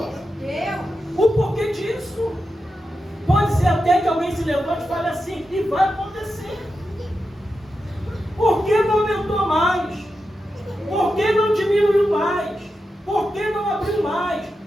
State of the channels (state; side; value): normal; both; correlation 0.89